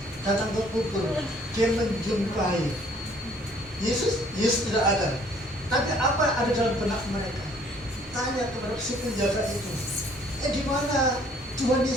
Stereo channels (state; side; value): normal; both; correlation 0.59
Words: datang ke kubur. Dia menjumpai Yesus tidak ada. Tapi apa yang ada dalam benak mereka? Tanya kepada si penjaga itu, di mana Tuhan